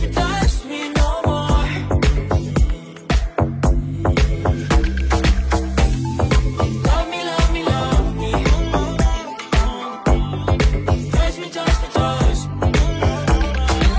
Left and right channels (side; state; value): both; identical; correlation 1.00